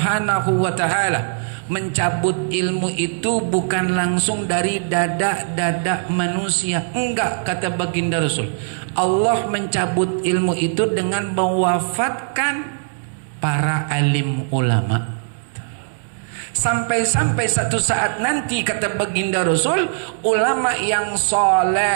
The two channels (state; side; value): silent; left; 66 dB below the other